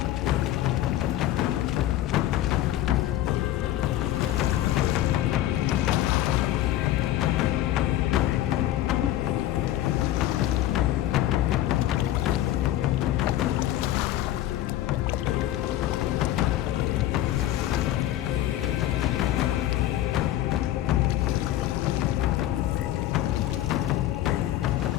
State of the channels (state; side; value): quieter; right; 13.6 dB